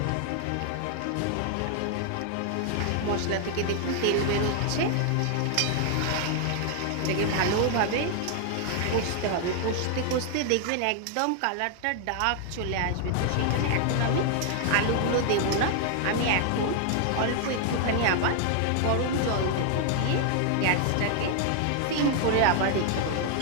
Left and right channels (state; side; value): different; both; correlation 0.00